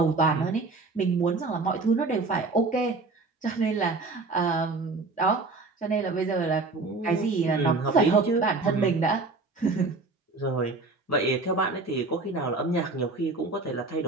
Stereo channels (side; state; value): left; quieter; 3.6 dB